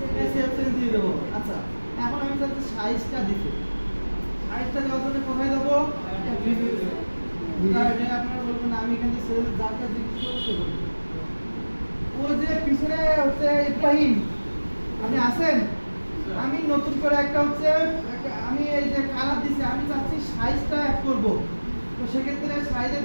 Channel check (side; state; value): both; inverted; correlation -1.00